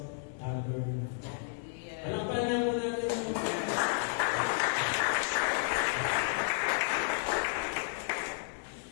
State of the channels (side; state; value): right; silent; digital silence